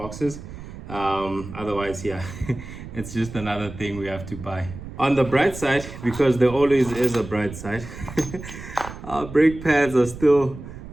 Otherwise, yeah, it's just another thing we have to buy. On the bright side, because there always is a bright side, our brake pads are still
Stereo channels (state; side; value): noise; right; rumble, 12 dB below the sound